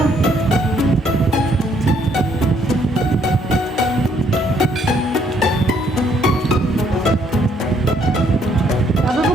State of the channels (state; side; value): normal; both; correlation 0.68